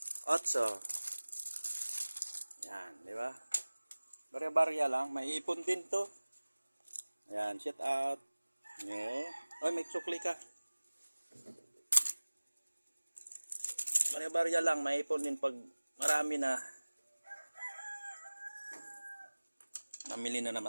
8. Yan, di ba? Barya-barya lang. May ipon din to. Yan, shout out. Yeah. Oy, may sukli ka. Barya-barya lang. May ipon din pag marami na. Namili na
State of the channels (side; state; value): both; inverted; correlation -1.00